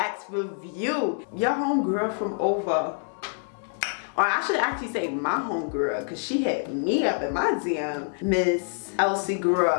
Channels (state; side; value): silent; right; 59 dB below the other